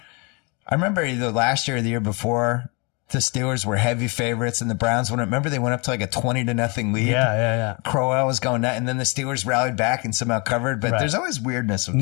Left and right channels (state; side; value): quieter; right; 30.7 dB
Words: I remember either last year or the year before, the Steelers were heavy favorites, and the Browns went. Remember, they went up to like a 20-0 lead. Yeah. Crowell was going nuts, and then the Steelers rallied back and somehow covered. But there's always weirdness with